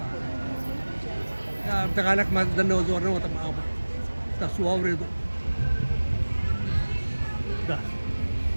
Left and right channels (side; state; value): both; inverted; correlation -1.00